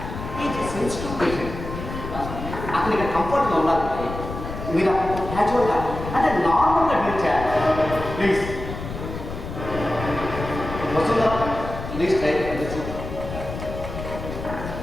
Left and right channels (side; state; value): left; noise; rumble, 8 dB below the sound